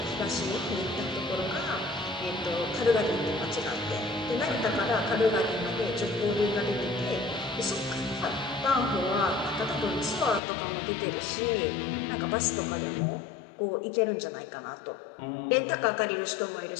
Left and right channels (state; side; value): drops out; right; at 10.4 s